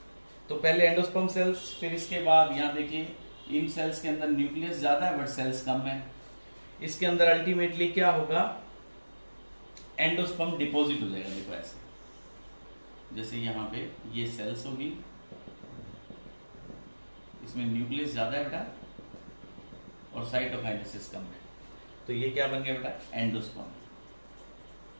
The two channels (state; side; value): inverted; both; correlation -1.00